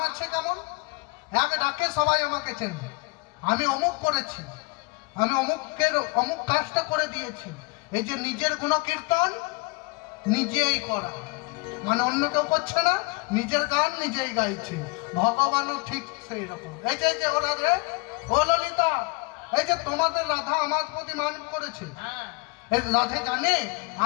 আছে কেমন, এক ডাকে সবাই আমাকে চেনে। আমি অমুক করেছি, আমি অমুকের অমুক কাজটা করে দিয়েছি। এই যে নিজের গুণকীর্তন নিজেই করা, মানে অন্য কেউ করছে না, নিজের গান নিজেই গাইছে। ভগবানও ঠিক সেই রকম। এই যে ও রাধে, ও ললিতা, এই যে তোমাদের রাধা আমার প্রতি মান করেছে। এই রাধে জানে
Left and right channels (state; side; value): quieter; right; 26.5 dB